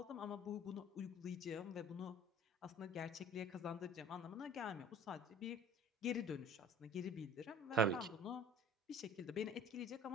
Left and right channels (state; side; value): normal; both; correlation 0.46